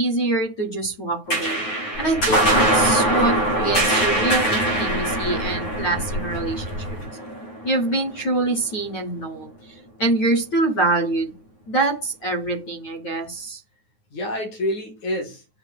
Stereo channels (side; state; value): right; late; 9.5 ms